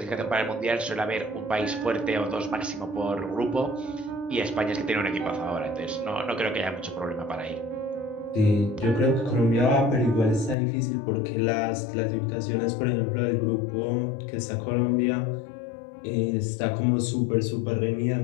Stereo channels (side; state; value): right; drops out; at 10.6 s